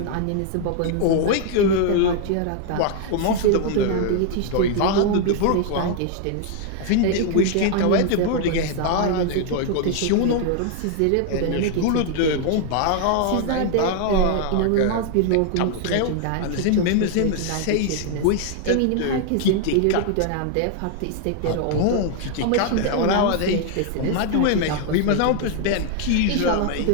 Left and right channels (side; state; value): both; different; correlation 0.00